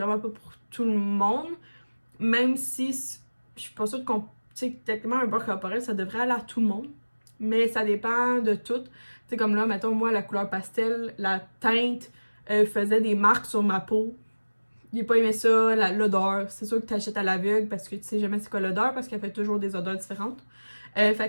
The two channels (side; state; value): both; inverted; correlation -1.00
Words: pas pour tout le monde. Même si je suis pas sûre qu'on. Tu sais, techniquement, un beurre corporel, ça devrait aller à tout le monde. Mais ça dépend de tout. Tu sais, comme là, mettons, moi, la couleur pastel, la teinte faisait des marques sur ma peau. J'ai pas aimé ça, l'odeur. C'est sûr que tu achètes à l'aveugle parce que tu sais jamais c'est quoi l'odeur parce qu'elle fait toujours des odeurs différentes.